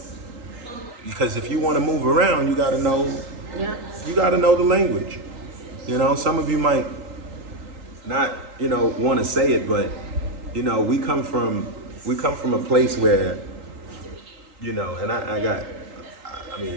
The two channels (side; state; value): left; late; 3.8 ms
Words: Because if you want to move around, you got to know. Yeah. You got to know the language. Some of you might not, want to say it, but we come from a place where, and I